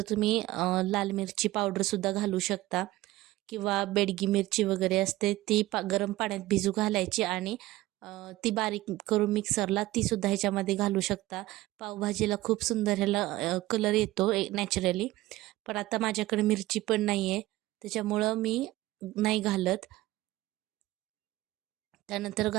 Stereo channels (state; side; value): quieter; left; 17.2 dB